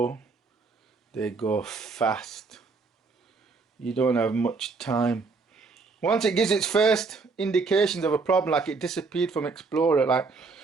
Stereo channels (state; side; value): quieter; left; 4.3 dB